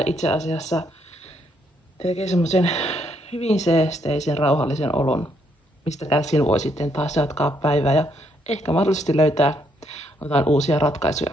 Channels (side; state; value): both; normal; correlation 0.73